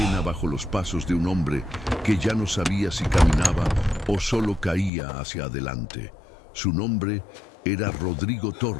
bajo los pasos de un hombre que ya no sabía si caminaba o solo caía hacia adelante. Su nombre era Rodrigo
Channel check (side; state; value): right; drops out; at 4.9 s